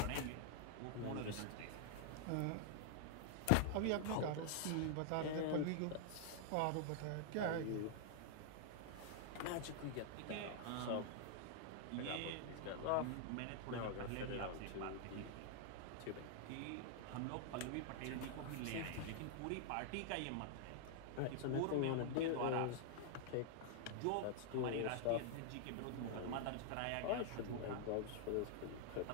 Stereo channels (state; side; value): different; both; correlation -0.01